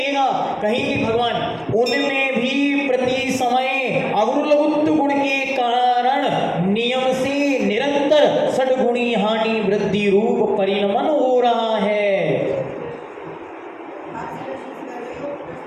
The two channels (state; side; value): identical; both; correlation 1.00